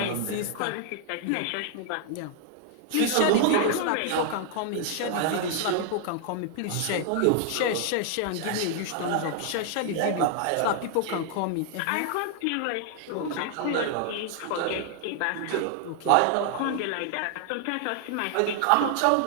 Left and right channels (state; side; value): different; both; correlation 0.00